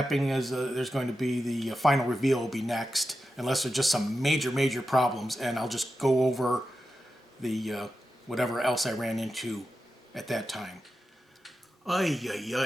is there's going to be the final reveal will be next, unless there's just some major problems, and I'll just go over the whatever else I ran into at that time. Ay, ay,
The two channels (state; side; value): normal; both; correlation 0.91